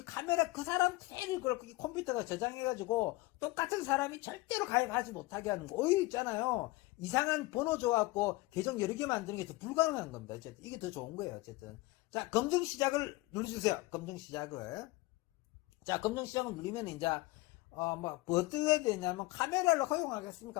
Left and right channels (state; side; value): quieter; right; 21.0 dB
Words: 카메라 그 사람 그대로 그렇고 이 컴퓨터가 저장해가지고 똑같은 사람이 절대로 가입하지 못하게 하는 거. 오히려 있잖아요. 이상한 번호 줘갖고 계정 여러 개 만드는 게 더 불가능한 겁니다. 어쨌든 이게 더 좋은 거예요. 어쨌든 자, 검증 시작을 눌러주세요. 검증 시작을. 자, 검증 시작을 누르면 이제 뭐 어떻게 되냐면 카메라를 허용하겠습니까?